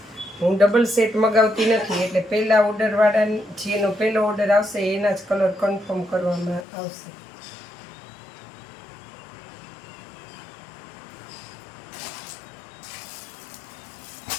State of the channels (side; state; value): right; drops out; at 6.7 s